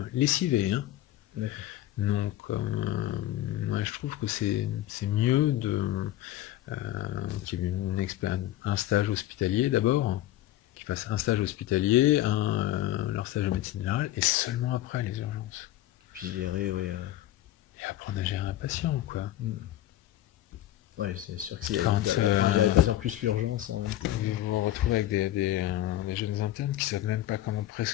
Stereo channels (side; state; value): right; quieter; 14.1 dB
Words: lessivés. Hein. Donc, moi, je trouve que c'est mieux qu'il y ait un stage hospitalier d'abord, qu'ils fassent un stage hospitalier, leur stage de médecine générale, et seulement après les urgences. Puis gérer, et apprendre à gérer un patient, quoi. Ouais, c'est sûr que s'il y a Quand, il y a de plus plus l'urgence. Hein. Vous vous retrouvez avec des jeunes internes qui savent même pas comment